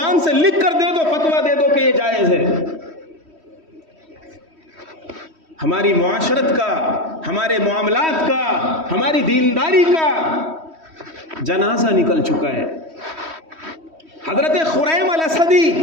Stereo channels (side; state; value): left; late; 3.1 ms